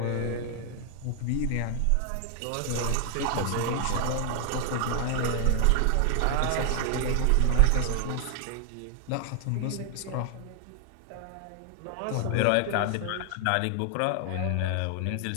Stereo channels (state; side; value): different; both; correlation 0.00